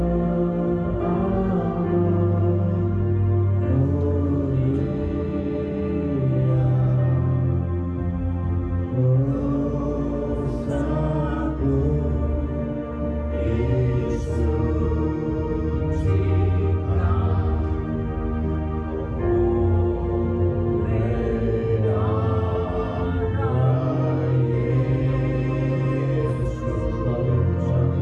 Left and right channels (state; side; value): identical; both; correlation 1.00